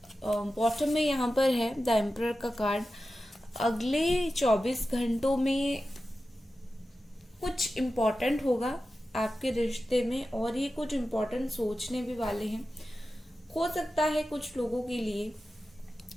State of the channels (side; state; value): both; normal; correlation 0.93